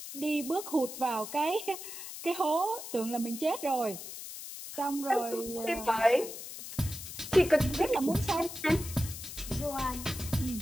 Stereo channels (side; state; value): left; noise; hiss, 10 dB below the sound